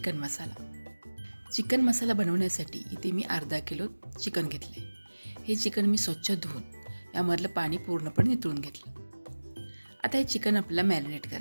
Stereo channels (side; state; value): both; inverted; correlation -1.00